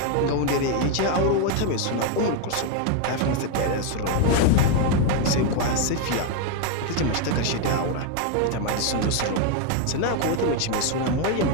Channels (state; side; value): different; both; correlation 0.01